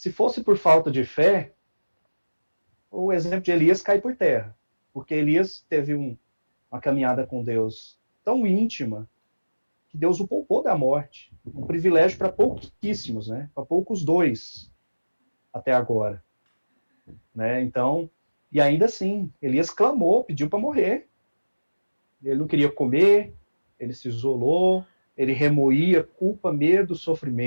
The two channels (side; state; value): both; inverted; correlation -1.00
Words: fosse por falta de fé, o exemplo de Elias cai por terra. Porque Elias teve uma caminhada com Deus tão íntima que Deus o poupou da morte. Um privilégio para pouquíssimos, né? Para poucos dois até agora. Né? Então, e ainda assim, Elias clamou, pediu para morrer. Ele não queria comer, ele se isolou, ele remoía culpa, medo,